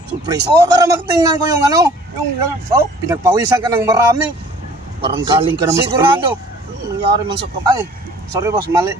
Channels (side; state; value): both; normal; correlation 0.52